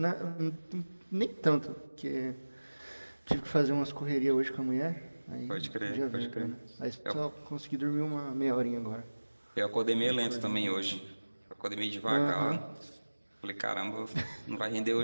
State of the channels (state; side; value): inverted; both; correlation -1.00